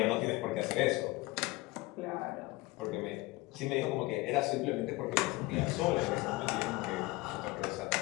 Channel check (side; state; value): right; quieter; 20.9 dB